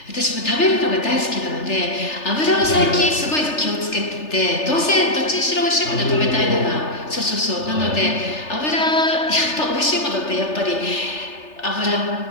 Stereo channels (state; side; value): late; right; 3.3 ms